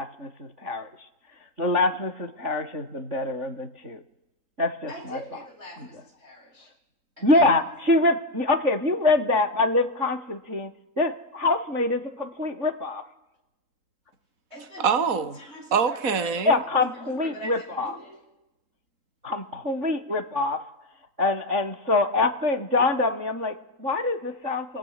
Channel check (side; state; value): left; late; 3.8 ms